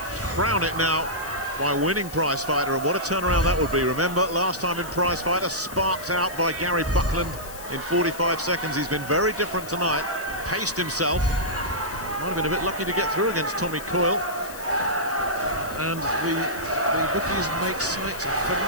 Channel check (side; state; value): left; noise; hiss, 15 dB below the sound